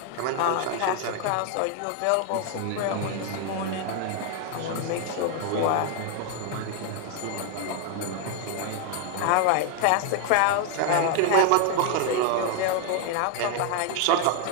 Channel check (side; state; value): both; different; correlation 0.00